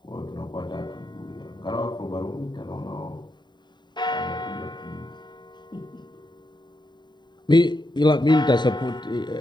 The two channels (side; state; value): right; late; 0.21 ms